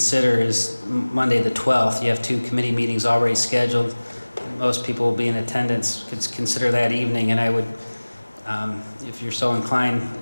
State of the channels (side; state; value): both; inverted; correlation -1.00